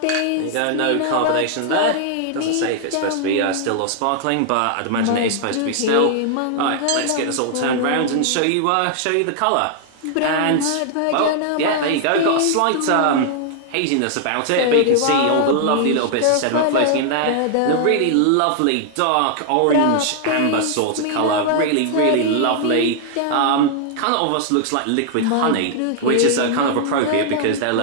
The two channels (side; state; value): both; different; correlation 0.00